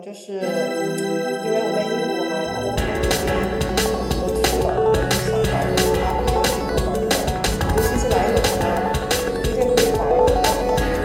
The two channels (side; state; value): both; identical; correlation 1.00